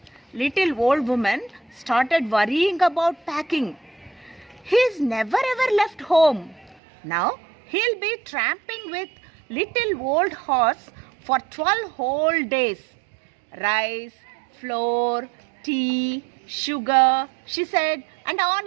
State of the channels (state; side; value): drops out; left; at 6.8 s